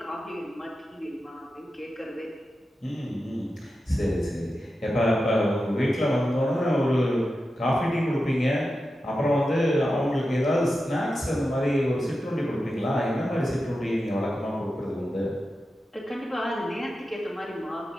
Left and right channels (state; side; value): normal; both; correlation 0.91